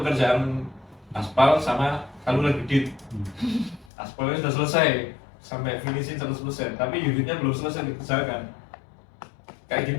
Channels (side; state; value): right; drops out; at 3.9 s